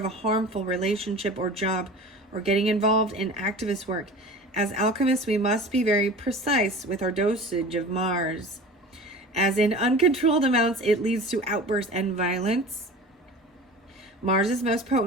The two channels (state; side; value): normal; both; correlation 0.38